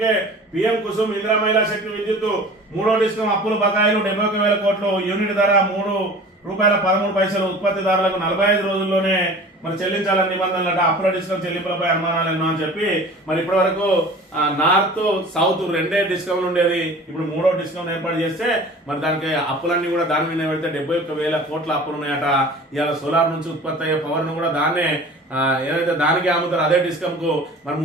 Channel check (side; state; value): both; normal; correlation 0.42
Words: కే పీఎం కుసుమ్ ఇందిరా మహిళా శక్తి విద్యుత్ 3వ డిస్కం అప్పులు బకాయిలు 71,000 కోట్లు, యూనిట్ ధర ₹3.13 ఉత్పత్తిదారులకు 45 రోజుల్లోనే మరి చెల్లించాలని నిబంధనలట. అప్పుల డిస్కౌంట్ చెల్లింపులపై అనుమానాలు ఎన్నో అని చెప్పి మరి ఇప్పటి వరకు నార్త్ సౌత్ 2 డిస్కౌంట్ ఉండేది. ఇప్పుడు 3వ డిస్కౌంట్ ఏర్పాటు చేస్తే మరి దానికి అప్పులన్నీ కూడా దాని మీద పెడితే 71,000 కోట్ల అప్పులు ఉన్నాయట. ఇవాళ సోలార్ నుంచి ఉత్పత్తి అయ్యే పవర్ ను కూడా దాన్నే ఏదైతే దానికి అమ్ముతారు అదే డిస్కమ్ కు మరి